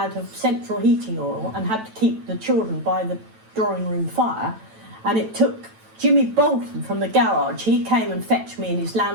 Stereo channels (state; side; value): late; left; 9.1 ms